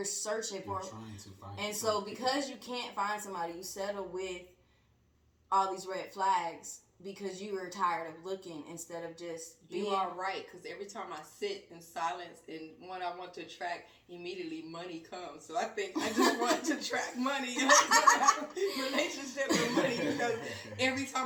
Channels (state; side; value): identical; both; correlation 1.00